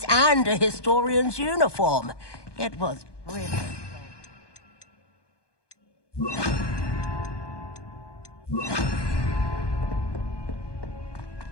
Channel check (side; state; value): right; late; 1.2 ms